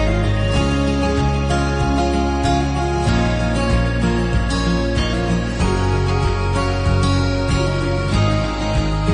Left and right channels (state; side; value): identical; both; correlation 1.00